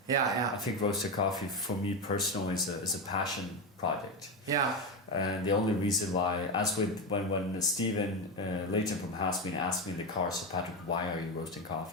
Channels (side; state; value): both; normal; correlation 0.14